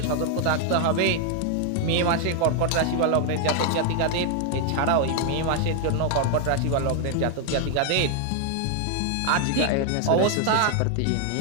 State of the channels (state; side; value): different; both; correlation 0.00